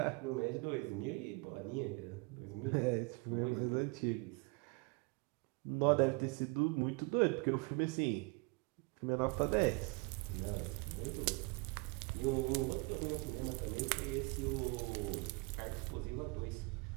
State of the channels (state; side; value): quieter; left; 28.3 dB